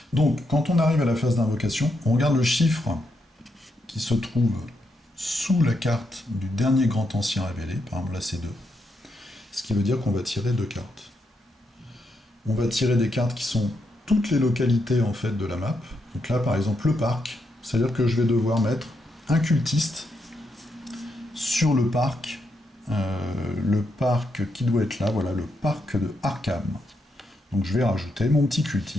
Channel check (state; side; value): normal; both; correlation 0.81